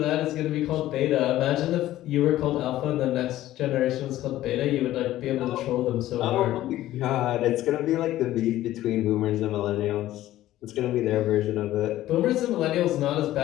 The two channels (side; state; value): right; quieter; 14.5 dB